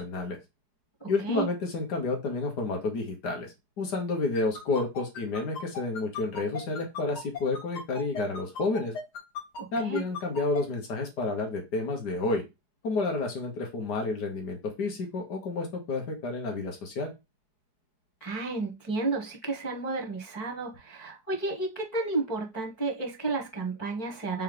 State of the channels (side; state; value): right; late; 5.0 ms